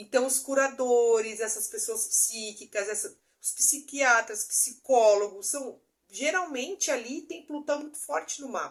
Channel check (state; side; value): identical; both; correlation 1.00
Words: os curadores, essas pessoas psíquicas, os psiquiatras, psicólogos, geralmente ali tem Plutão muito forte no